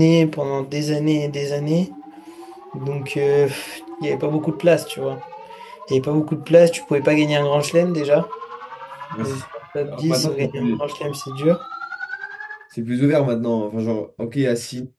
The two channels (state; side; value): identical; both; correlation 1.00